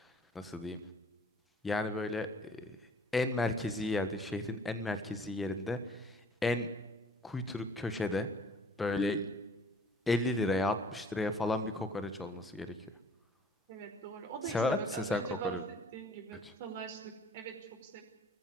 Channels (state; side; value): normal; both; correlation 0.53